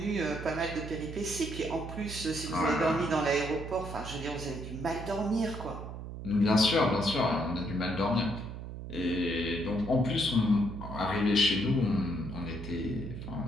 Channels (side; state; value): right; noise; hum, 9 dB below the sound